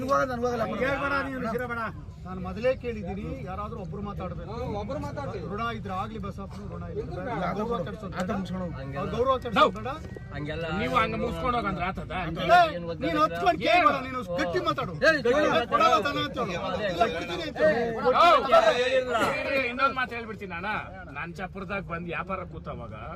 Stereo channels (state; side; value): identical; both; correlation 1.00